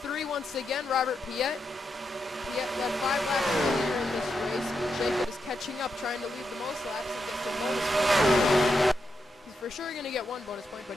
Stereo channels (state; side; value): normal; both; correlation 0.84